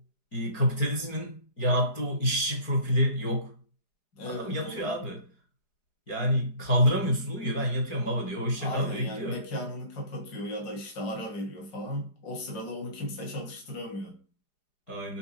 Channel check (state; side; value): late; right; 4.9 ms